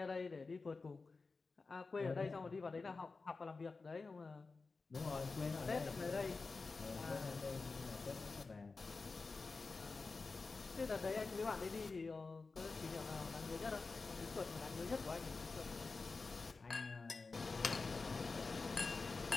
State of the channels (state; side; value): quieter; right; 4.1 dB